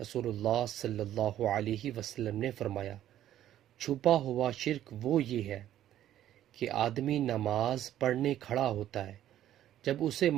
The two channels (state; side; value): quieter; left; 12.1 dB